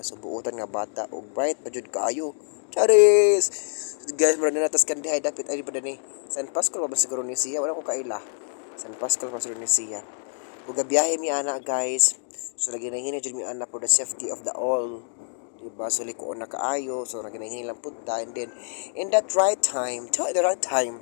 So buotan nga bata og bright pa jud kaayo. Charis. Guys, mura na natas Candy High dapat ay pa ni. San Pascual pa ba siguro ni siya? Wala ko kaila. San Pascual pa siguro ni siya. Ug gabiyahe mi ana guys. So naginahini jud mi ana for the safety of the all. Diba? So likoon na kaayo. So naginahini lang punta and then in that right time,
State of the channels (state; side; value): silent; right; 61 dB below the other